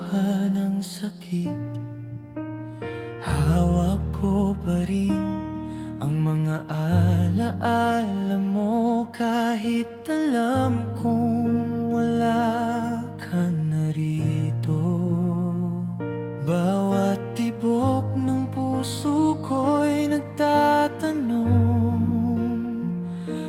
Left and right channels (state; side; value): identical; both; correlation 1.00